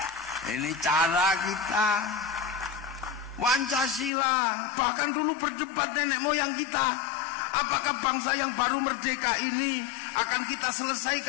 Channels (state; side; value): drops out; right; at 4.1 s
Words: Ini cara kita. Pancasila, bahkan dulu berdebat nenek moyang kita, apakah bangsa yang baru merdeka ini akan kita